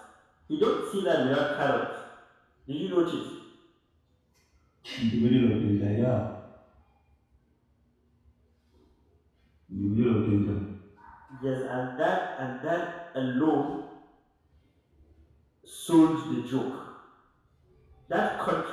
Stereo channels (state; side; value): identical; both; correlation 1.00